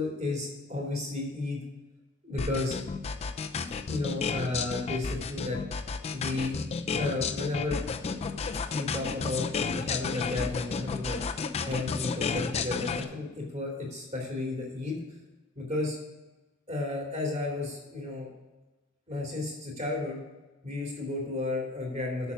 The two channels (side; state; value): right; quieter; 3.2 dB